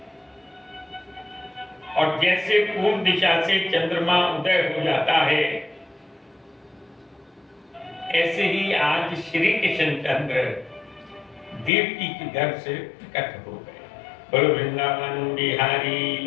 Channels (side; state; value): right; drops out; at 11.7 s